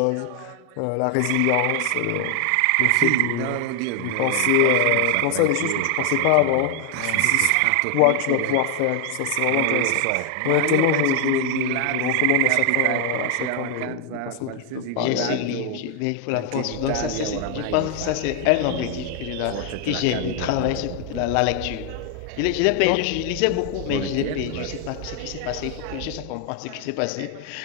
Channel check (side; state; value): both; different; correlation 0.00